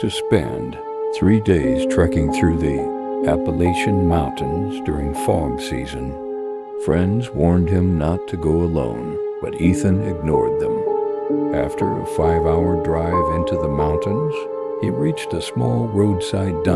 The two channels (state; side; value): identical; both; correlation 1.00